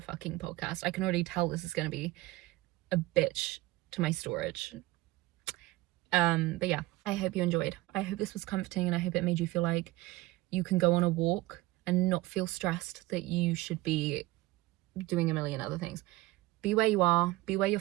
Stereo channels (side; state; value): left; quieter; 18.7 dB